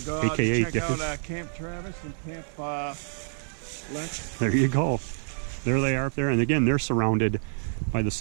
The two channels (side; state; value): left; silent; 60 dB below the other